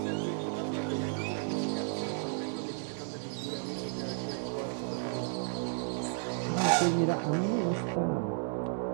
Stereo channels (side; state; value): left; silent; 56 dB below the other